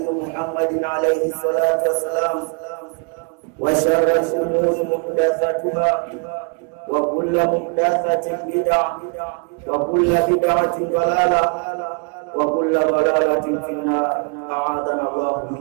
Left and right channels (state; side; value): quieter; left; 35.9 dB